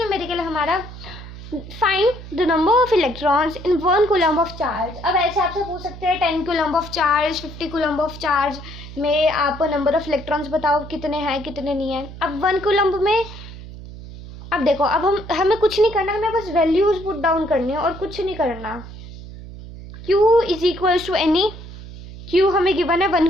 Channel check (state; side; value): noise; right; hum, 14 dB below the sound